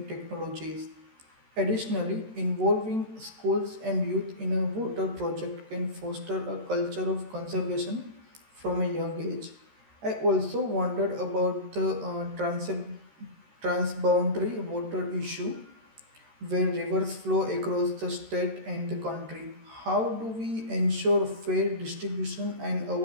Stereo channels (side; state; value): left; late; 13 ms